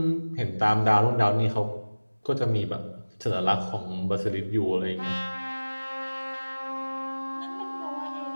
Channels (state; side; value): inverted; both; correlation -1.00